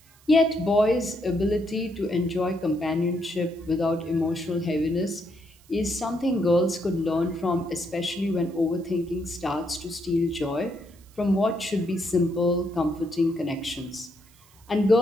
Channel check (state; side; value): noise; right; hiss, 28 dB below the sound